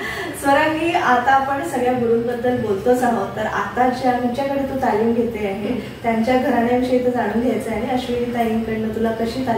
स्वरांगी, आता आपण सगळ्या गुरूंबद्दल बोलतोच आहोत, तर आता ज्यांच्याकडे तू तालीम घेते आहे त्यांच्या घराण्याविषयी तर जाणून घ्यायचं आहे आणि अश्विनी ताईंकडनं तुला कशी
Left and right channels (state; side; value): identical; both; correlation 1.00